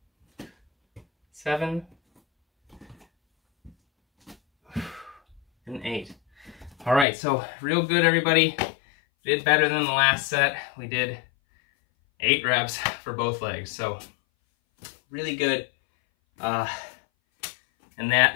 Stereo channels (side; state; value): right; drops out; at 7.1 s